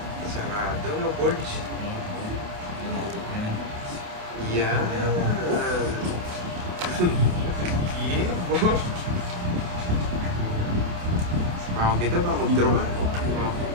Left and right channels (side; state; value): left; late; 28 ms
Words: Sarado, no, Borge? Yeah. Yeah, boy. Ako kita ba? Mag-draw ka.